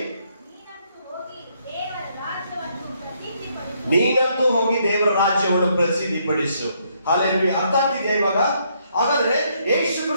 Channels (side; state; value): both; inverted; correlation -0.72